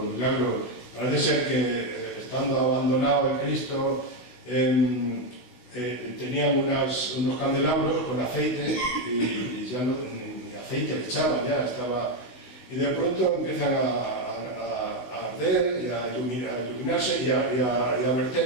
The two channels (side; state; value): right; late; 16 ms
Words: milagros. Parece ser que, estando abandonado el Cristo, tenían unos candelabros con aceite y ya ni aceite le echaban, ya estaba. Y de pronto empiezan a arder y a iluminarse y a